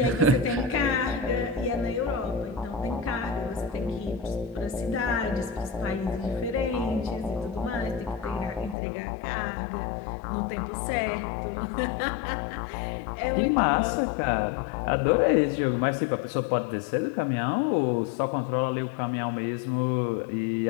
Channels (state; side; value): drops out; right; at 8.8 s